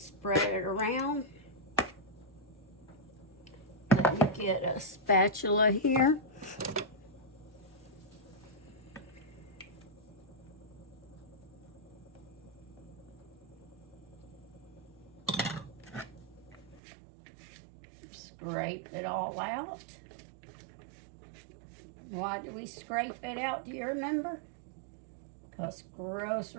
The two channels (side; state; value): left; drops out; at 16.8 s